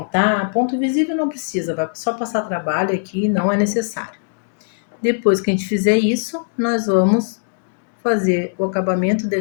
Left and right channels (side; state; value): right; silent; digital silence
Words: ponto visível não precisa, vai só passar trabalho aqui, não é necessário. Depois que a gente fizer isso, nós vamos fazer o acabamento